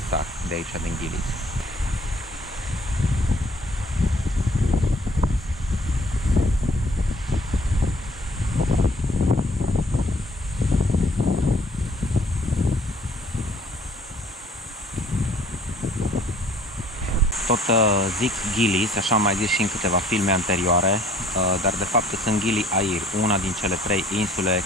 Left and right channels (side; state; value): both; normal; correlation 0.57